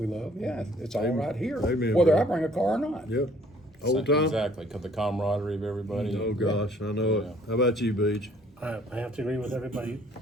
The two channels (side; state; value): both; normal; correlation 0.59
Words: love, it's all right here, Amen, whether brother. I bring a car or not. Yep. Old time. Exactly, 'cause the camaraderie of everybody. Oh gosh, I know it. How about you, Beach? I have to agree with everybody.